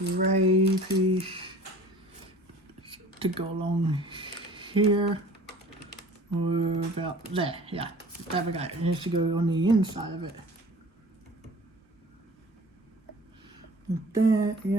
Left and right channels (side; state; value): both; normal; correlation 0.45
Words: piece to go along here. Or about there, yeah. There we go. It has to go on the inside of it. Like that,